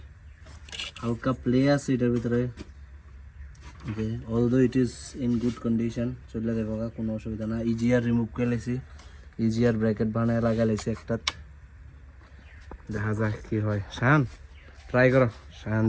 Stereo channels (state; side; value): identical; both; correlation 1.00